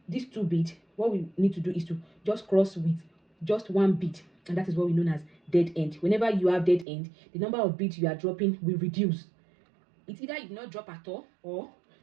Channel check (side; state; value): left; drops out; at 6.9 s